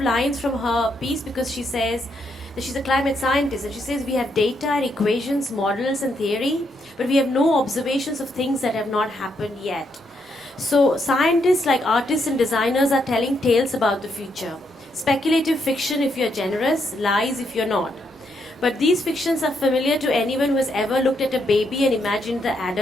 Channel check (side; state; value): both; normal; correlation 0.77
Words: lines from her piece, because she says that she's a climate scientist, and she says we have data and equations, models and theory, but we have no observations of things that have not happened yet. So scientists, like artists and designers, are telling tales about the future. Speculative fiction if you're generous, lies if you're not. But these fictions are familiar to anyone who has ever looked at a baby and imagined the